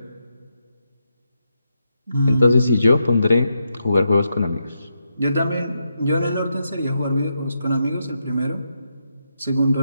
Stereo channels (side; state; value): both; inverted; correlation -0.83